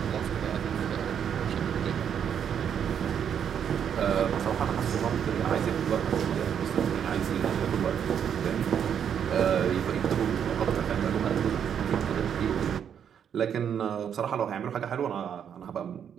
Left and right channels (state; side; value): quieter; left; 8.3 dB